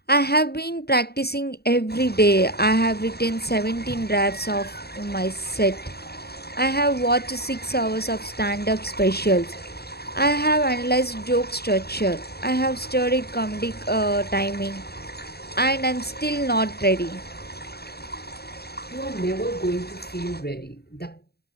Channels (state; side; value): late; right; 0.47 ms